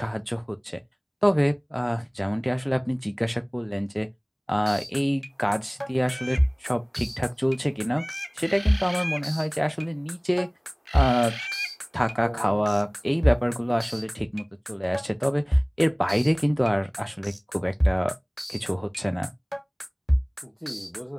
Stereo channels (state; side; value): identical; both; correlation 1.00